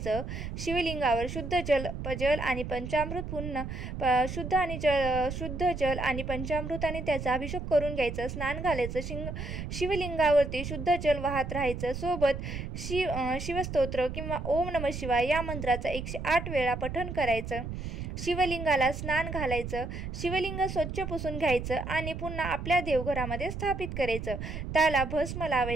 शिवलिंगावर शुद्ध जल आणि पंचामृत, पुन्हा शुद्ध जल आणि पंचामृताने त्याचा अभिषेक करून घ्यायचं. स्नान घालायचं. शिवलिंगावरती शुद्ध जल वाहत राहायचं. सोबत शिवस्तोत्र किंवा ओम नमः शिवाय या मंत्राचा 108 वेळा पठण करायचं. शिवलिंगाला स्नान घालायचं. शिवलिंग स्वच्छ पुसून घ्यायचं आणि पुन्हा आपल्या देवघरामध्ये घरामध्ये स्थापित करायचं. त्याला भस्म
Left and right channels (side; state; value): right; noise; rumble, 6 dB below the sound